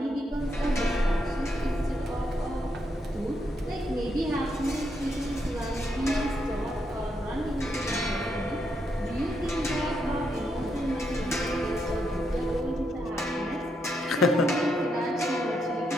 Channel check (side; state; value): both; normal; correlation 0.79